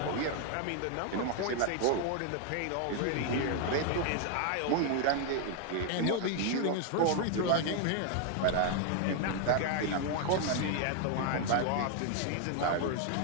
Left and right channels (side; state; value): both; different; correlation 0.00